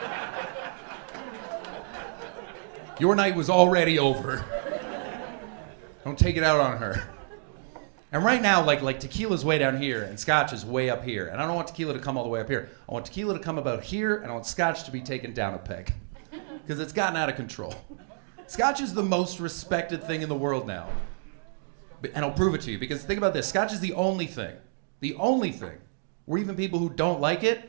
Your night was already over. Don't take it out on her. And right now, like tequila's way down here and scotch is way up here. And I don't want tequila to come all the way up here. I want tequila to come about here, and I want scotch to be taken down a peg. Because it's gotten out of control. Scotch is the most respected thing in the world now. And I'll prove it to you, because think about this. Scotch is the only thing where even people who don't like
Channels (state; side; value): silent; left; digital silence